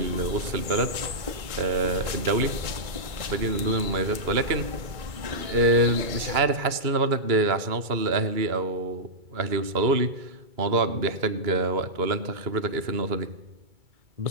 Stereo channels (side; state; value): left; late; 2.2 ms